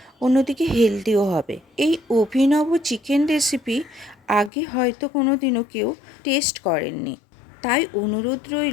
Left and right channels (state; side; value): drops out; right; at 4.5 s